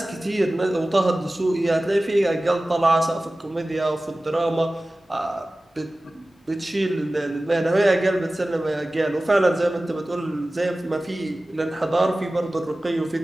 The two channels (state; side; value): normal; both; correlation 0.97